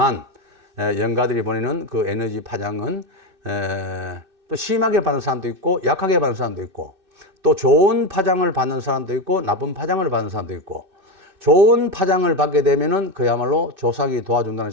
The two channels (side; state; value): left; late; 2.6 ms